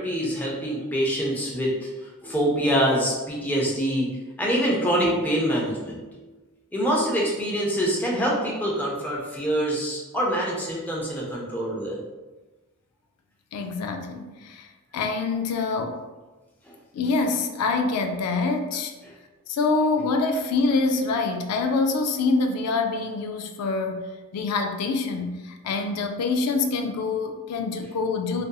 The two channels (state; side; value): normal; both; correlation 0.38